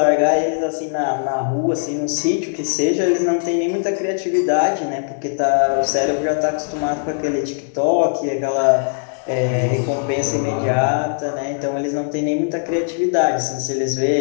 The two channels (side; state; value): right; silent; digital silence